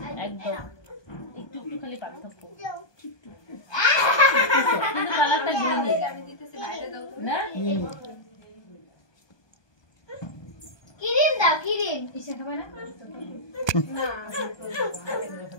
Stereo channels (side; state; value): right; late; 1.2 ms